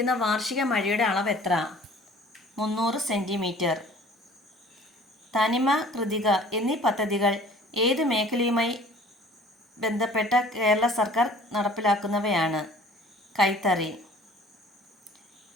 വാർഷിക മഴയുടെ അളവ് എത്ര? 300 സെൻറ്റിമീറ്റർ. തനിമ, കൃതിക എന്നീ പദ്ധതികൾ ഏത് മേഖലയുമായി ബന്ധപ്പെട്ട കേരള സർക്കാർ നടപ്പിലാക്കുന്നവയാണ്. കൈത്തറി.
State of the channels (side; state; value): both; normal; correlation 0.49